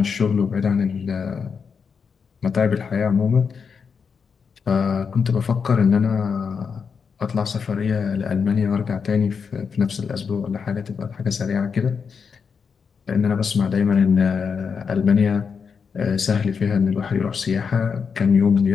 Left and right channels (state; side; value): quieter; right; 6.0 dB